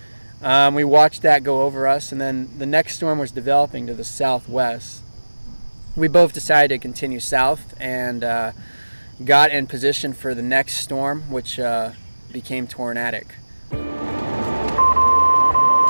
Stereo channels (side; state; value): both; inverted; correlation -1.00